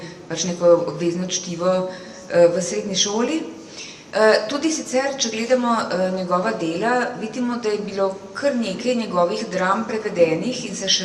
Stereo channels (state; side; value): identical; both; correlation 1.00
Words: pač neko obvezno čtivo v srednji šoli. Tudi sicer, če gledamo njegova dela, vidimo, da je bilo kar nekaj njegovih dram prevedenih in se